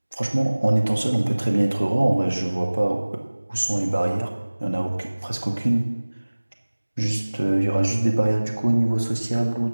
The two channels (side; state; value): both; inverted; correlation -1.00